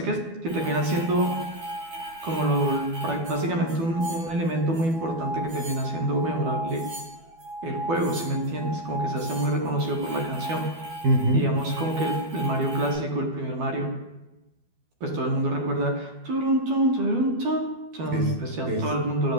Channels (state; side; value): late; left; 12 ms